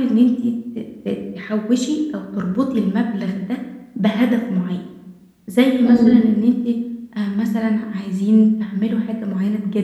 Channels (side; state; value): both; identical; correlation 1.00